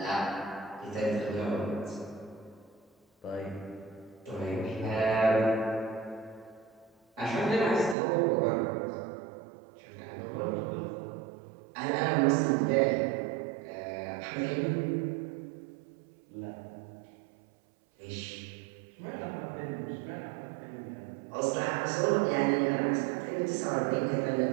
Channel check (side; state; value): left; drops out; at 8.0 s